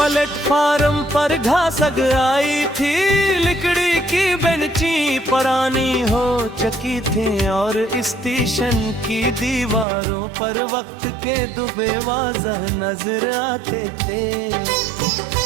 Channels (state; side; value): drops out; left; at 9.9 s